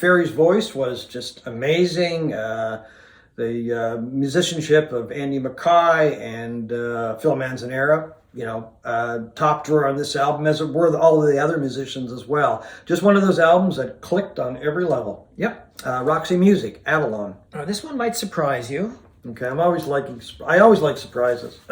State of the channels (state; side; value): identical; both; correlation 1.00